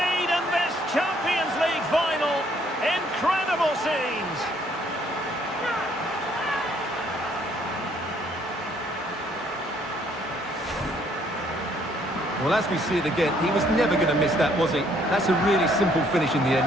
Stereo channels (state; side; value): normal; both; correlation 0.65